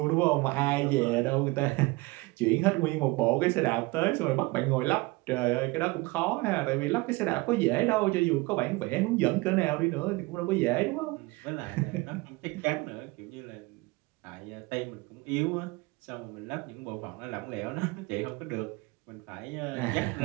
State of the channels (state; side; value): quieter; left; 23.4 dB